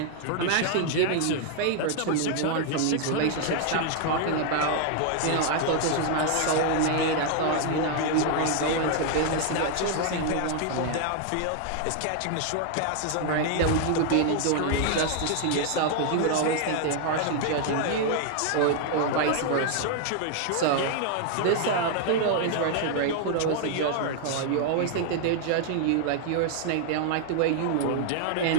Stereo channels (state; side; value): different; both; correlation 0.00